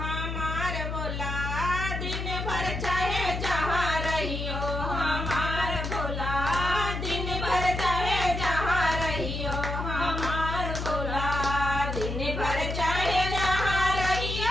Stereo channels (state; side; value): noise; left; hum, 4 dB below the sound